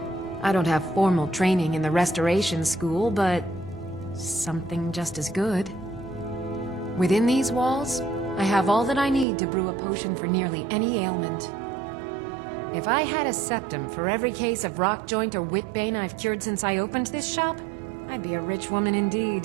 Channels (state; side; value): drops out; left; at 9.2 s